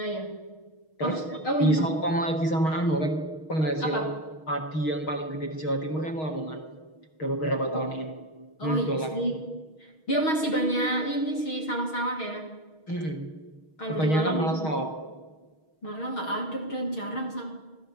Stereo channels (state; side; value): late; right; 6.4 ms